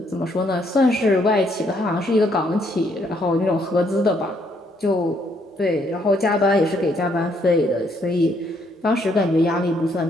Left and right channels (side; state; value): both; normal; correlation 0.71